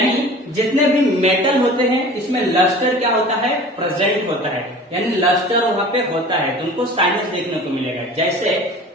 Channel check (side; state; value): both; normal; correlation 0.41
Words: जितने भी मेटल होते हैं इसमें लस्टर क्या होता है, प्रेजेंट होता है, यानी लस्टर वहां पे होता है, तुमको साइनेस देखने को मिलेगा। जैसे